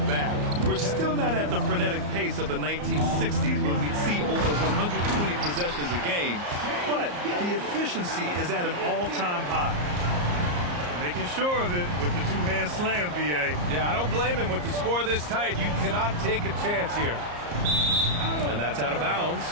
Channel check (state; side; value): late; left; 34 ms